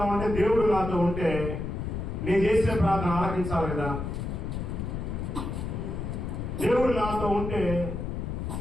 దేవుడు నాతో ఉంటే నేను చేసే ప్రార్థన ఆలకించాలి కదా, దేవుడు నాతో ఉంటే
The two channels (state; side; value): noise; left; rumble, 4 dB below the sound